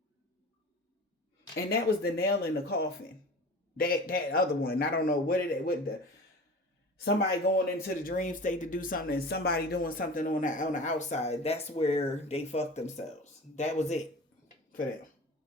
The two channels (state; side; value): normal; both; correlation 0.37